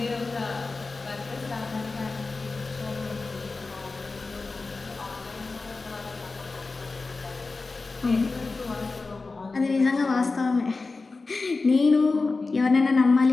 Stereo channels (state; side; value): quieter; right; 3.8 dB